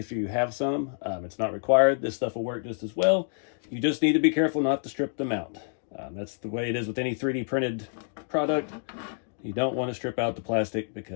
you have some. It's not required. This stuff will work just as well. You just need to be careful not to strip them out. That's the way it is with any 3D printed product. You don't want to strip out the plastic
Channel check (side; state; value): right; silent; digital silence